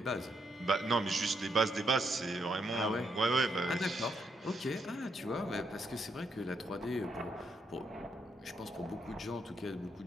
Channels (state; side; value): normal; both; correlation 0.78